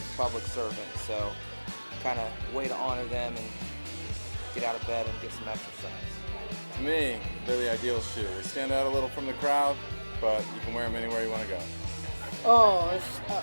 public servants, so kind of way to honor them and get out of bed and get some exercise. To me, they're the ideal shoe. They stand out a little from the crowd, but you can wear them anywhere you want to go. Oh,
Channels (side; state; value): both; inverted; correlation -1.00